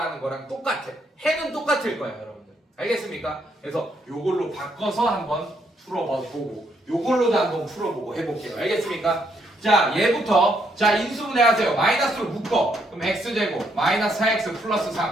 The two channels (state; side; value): normal; both; correlation 0.74